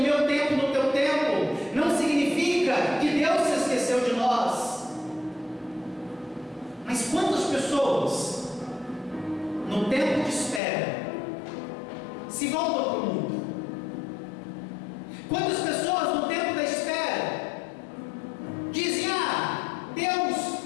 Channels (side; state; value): right; drops out; at 10.6 s